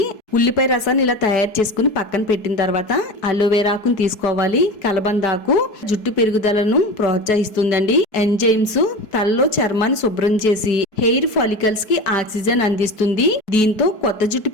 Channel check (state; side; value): late; right; 4.7 ms